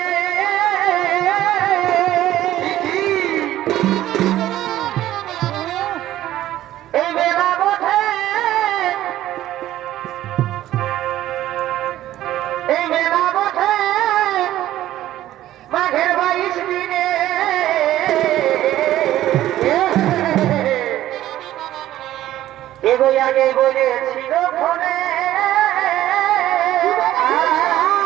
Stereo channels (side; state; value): left; quieter; 13.7 dB